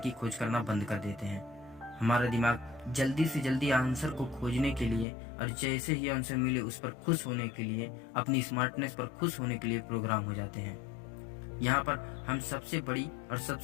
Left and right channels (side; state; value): right; drops out; at 5.1 s